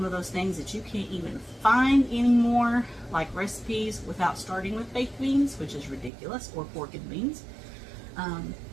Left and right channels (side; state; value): left; drops out; at 6.1 s